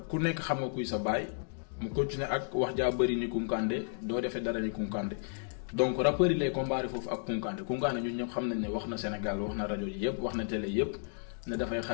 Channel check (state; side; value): silent; right; digital silence